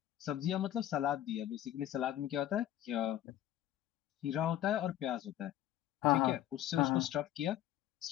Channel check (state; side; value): quieter; right; 12.5 dB